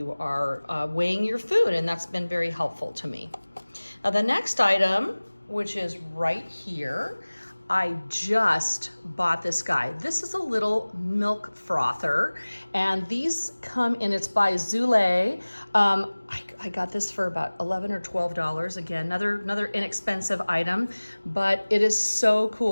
are weighing your food, and that's been very helpful to me. Now the next item, which is right here, I just bought this guy. This is a little milk frother, and these come in, it's by Zule. I got this for about $11 or $12. Again, another inexpensive item, but it is so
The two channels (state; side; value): inverted; both; correlation -1.00